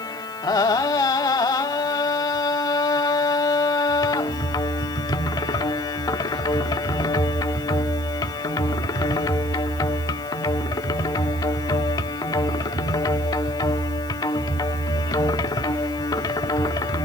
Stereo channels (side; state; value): right; noise; hiss, 21 dB below the sound